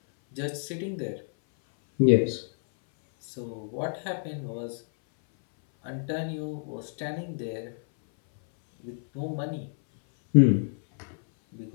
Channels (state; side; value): silent; right; 57 dB below the other